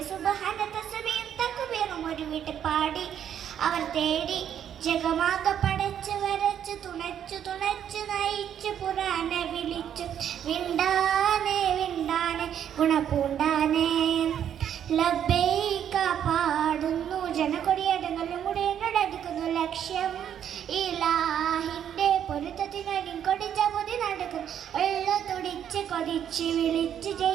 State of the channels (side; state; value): left; quieter; 9.5 dB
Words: സുബ്ഹാന തസ്ബീഹും തക്ബീറും ഒരു വീട്ടിൽ പാടി അവർ തേടി ജഗമാകെ പടച്ച് വരച്ച് തുണച്ചു തുണച്ചു നയിച്ചു പുരാനെ വിളിച്ചു വിണ്ടാനെ വിണ്ടാനെ ഗുണപൂണ്ടാനെ ലബ്ബൈക പാടുന്നു ജനകൊടിയടങ്ങളും കൂടെ എന്നോടടുക്കുന്നു ലക്ഷ്യം ഇലാഹിന്റെ പൊരുത്തത്തിനടി കൊടിച്ച പൊതി നടക്കുന്നു ഉള്ള തുടിച്ച് കൊതിച്ച് വിളിച്ച്